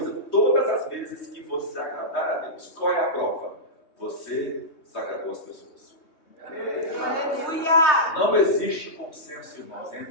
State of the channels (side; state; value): right; late; 3.2 ms